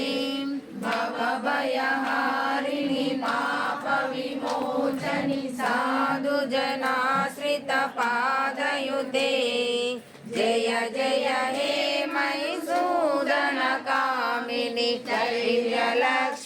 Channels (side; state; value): both; identical; correlation 1.00